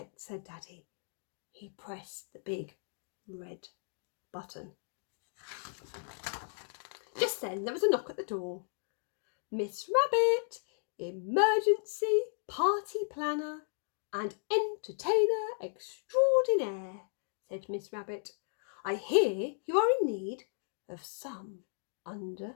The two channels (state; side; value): silent; right; digital silence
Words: said Daddy. He pressed the big red button. Just then there was a knock at the door. Miss Rabbit, emergency party planner and entertainer extraordinaire, said Miss Rabbit. I hear you are in need of some